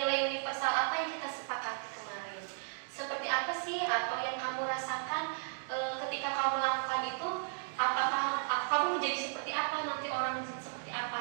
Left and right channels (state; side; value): silent; left; digital silence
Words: universal apa yang kita sepakati kemarin? Seperti apa sih atau yang kamu rasakan ketika kamu melakukan itu? Apakah kamu menjadi seperti apa, nanti orang seperti